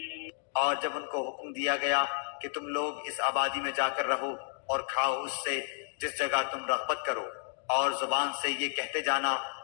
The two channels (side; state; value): right; silent; digital silence